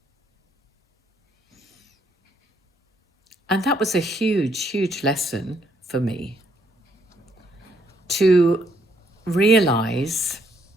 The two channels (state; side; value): normal; both; correlation 0.71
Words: And that was a huge, huge lesson for me, to realize